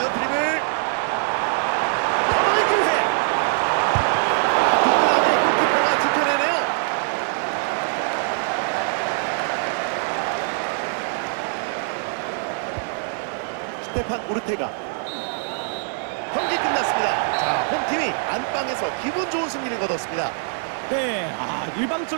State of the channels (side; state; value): left; silent; 61 dB below the other